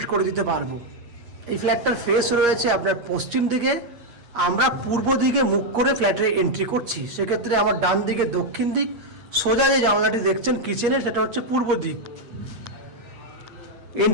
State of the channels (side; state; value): left; late; 8.5 ms